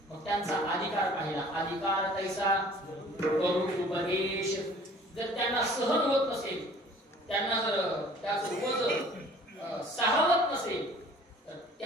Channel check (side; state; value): both; normal; correlation 0.51